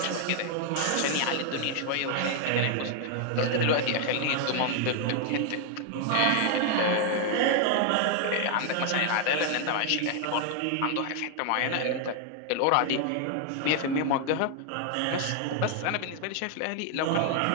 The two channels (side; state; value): both; different; correlation 0.00